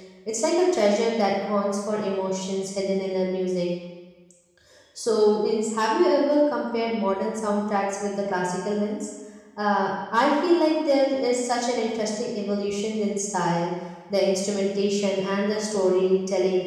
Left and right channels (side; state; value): both; identical; correlation 1.00